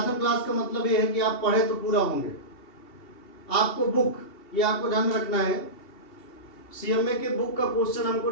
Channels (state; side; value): late; right; 2.7 ms